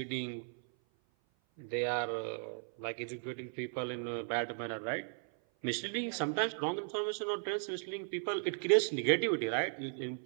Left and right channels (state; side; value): silent; left; 54 dB below the other